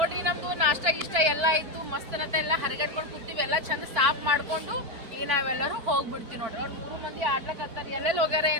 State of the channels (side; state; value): left; late; 4.5 ms